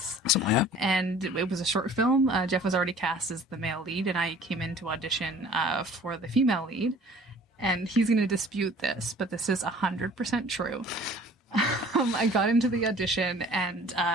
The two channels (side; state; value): both; normal; correlation 0.49